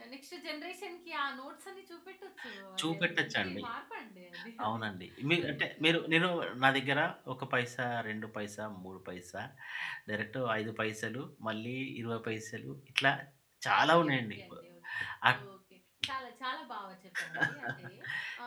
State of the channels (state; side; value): identical; both; correlation 1.00